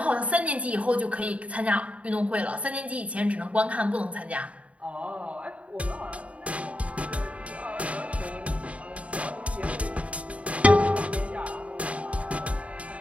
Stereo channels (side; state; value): left; late; 0.065 ms